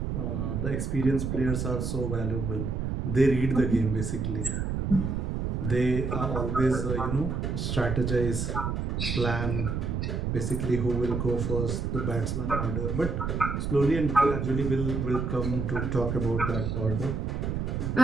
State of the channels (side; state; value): right; noise; rumble, 1 dB below the sound